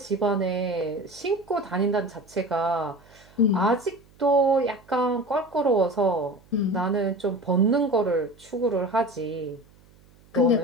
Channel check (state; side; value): noise; right; hum, 28 dB below the sound